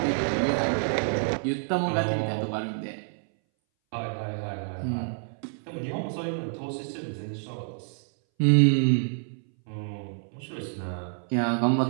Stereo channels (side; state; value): left; silent; 59 dB below the other